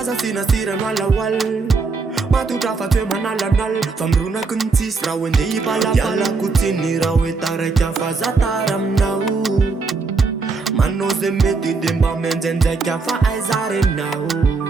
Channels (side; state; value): left; quieter; 4.3 dB